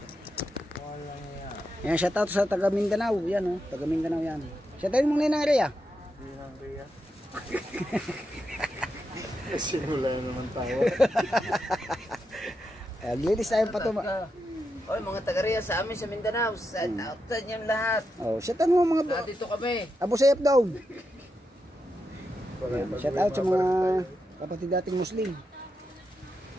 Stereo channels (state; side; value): normal; both; correlation 0.86